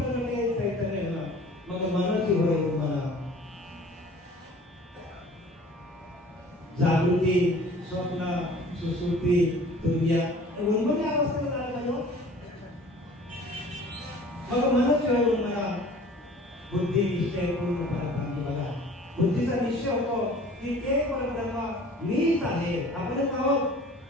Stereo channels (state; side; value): normal; both; correlation 0.47